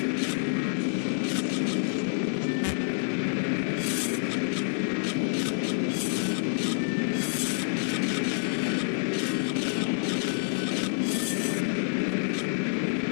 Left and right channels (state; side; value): silent; right; 60 dB below the other